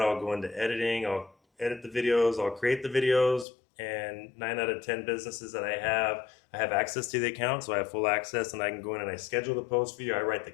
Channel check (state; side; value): drops out; right; at 3.5 s